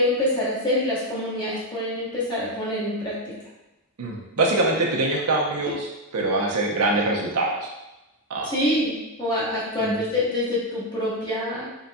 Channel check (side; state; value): both; normal; correlation 0.01